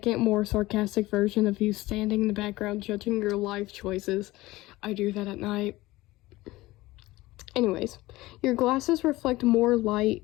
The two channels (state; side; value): quieter; right; 18.9 dB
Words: more sarcastic version of you standing in the background judging your life choices. I do that at night. Anyways, your glasses reflect more light.